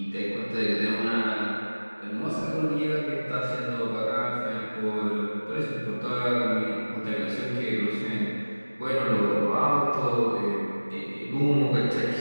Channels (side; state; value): both; inverted; correlation -1.00